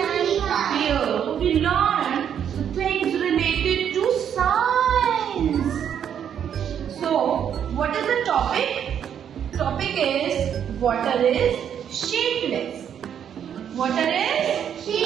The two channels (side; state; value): left; quieter; 8.8 dB